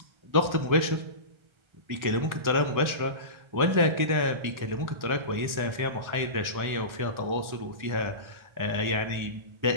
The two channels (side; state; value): left; late; 1.3 ms